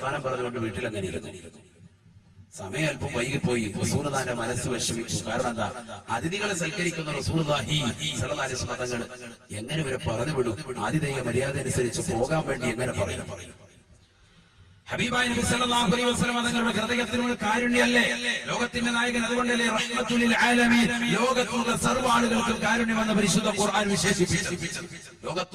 പറഞ്ഞുകൊണ്ട് വീട്ടിൽ അങ്ങനെ ഇരുന്നു. സമയം അല്പം വൈകിപ്പോയി. റസൂലുള്ളാഹിന്റെ മനസ്സ് വിഷമിച്ചു. കാരണം എന്താ? അതിഥികളെ സൽക്കരിക്കുന്ന റസൂലുള്ളാഹി സ്വല്ലല്ലാഹു അലൈഹി വസല്ലം തങ്ങൾ എങ്ങനെ ഇവരെ പറഞ്ഞു വിടും? ആതിഥേയ മര്യാദ അനുസരിച്ച് പോകാൻ വേണ്ടി എങ്ങനെ പറയും? ഹബീബായ നബി സല്ലല്ലാഹു അലൈഹി വസല്ലം തങ്ങളുടെ ഹൃദയത്തിനുള്ള കാരുണ്യമല്ലേ ലോകത്തിന്റെ നായകൻ? അതുകൊണ്ടല്ലേ റഹ്മത്തുൽ ലിൽ ആലമീൻ, ലോകത്തുള്ള സർവ്വ ആളുകൾക്കും കാരുണ്യമെന്ന് പരിശുദ്ധ ഖുർആൻ വിശേഷിപ്പിച്ചു. ലോകത്ത്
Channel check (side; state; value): both; identical; correlation 1.00